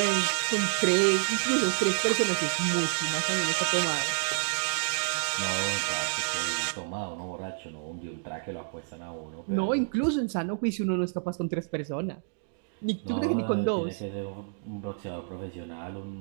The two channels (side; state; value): left; silent; digital silence